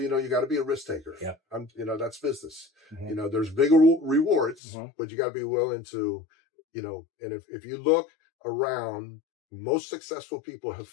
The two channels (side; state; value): right; drops out; at 4.5 s